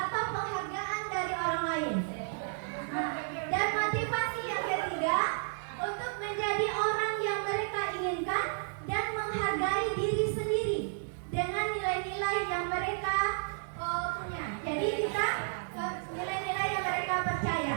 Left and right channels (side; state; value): left; silent; 56 dB below the other